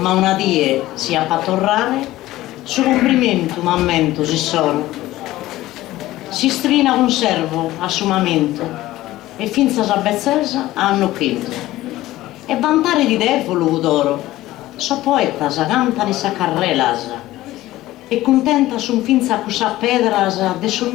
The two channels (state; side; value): quieter; right; 16.2 dB